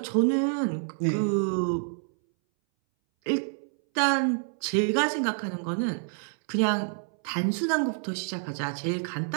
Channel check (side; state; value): left; silent; 60 dB below the other